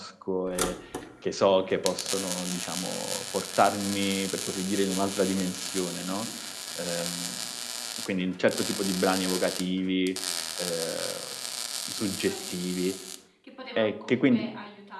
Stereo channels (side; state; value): both; identical; correlation 1.00